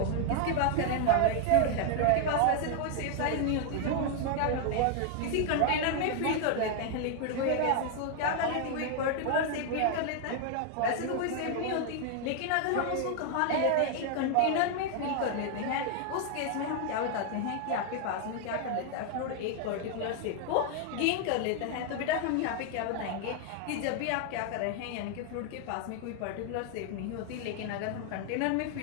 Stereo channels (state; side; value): different; both; correlation 0.00